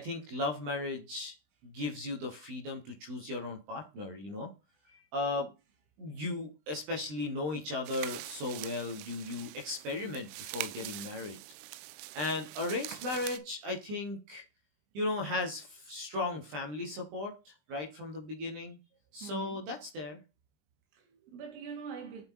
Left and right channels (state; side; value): late; left; 20 ms